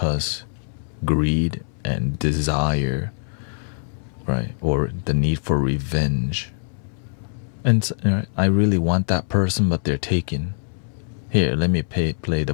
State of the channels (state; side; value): silent; right; 60 dB below the other